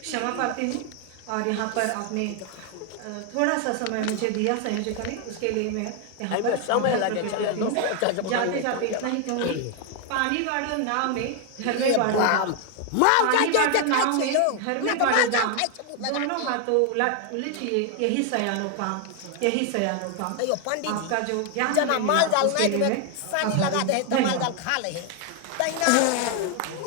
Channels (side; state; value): both; different; correlation 0.00